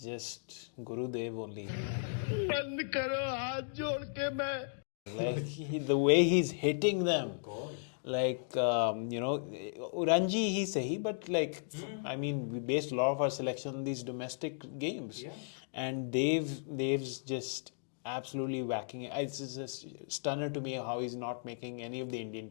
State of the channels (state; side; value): silent; right; digital silence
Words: just Guru Dev only. Like, the way he's hitting them. God. Like, Ranji, he's sahi, but like, I mean, we based a lot of our selection on these domestic games. Yeah. And Dev's just absolutely whacking it. It's just stunner to me how he's not making any of the Indian